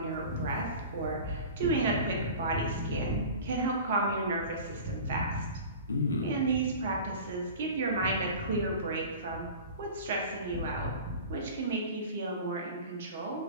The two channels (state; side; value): inverted; both; correlation -0.37